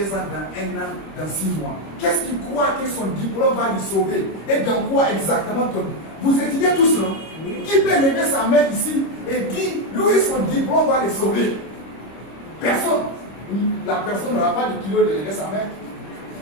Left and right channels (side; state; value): right; late; 26 ms